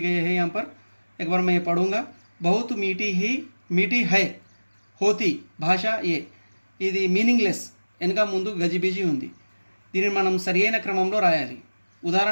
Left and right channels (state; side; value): inverted; both; correlation -1.00